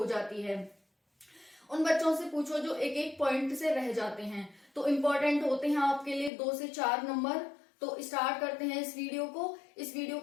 जाती है। उन बच्चों से पूछो जो एक एक पॉइंट से रह जाते हैं, तो इम्पोर्टेंट होते हैं आपके लिए 2 से 4 नंबर। तो स्टार्ट करते हैं इस वीडियो को। इस वीडियो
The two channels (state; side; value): drops out; right; at 6.3 s